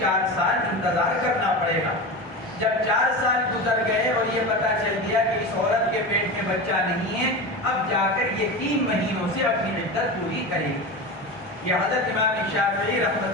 سال انتظار کرنا پڑے گا۔ جب 4 سال گزر گئے اور یہ پتہ چل گیا کہ اس عورت کے پیٹ میں بچہ نہیں ہے، اب جا کر یہ 3 مہینوں سے اپنی عدت پوری کرے گی۔ یہ حضرت امام شافعی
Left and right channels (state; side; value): normal; both; correlation 0.25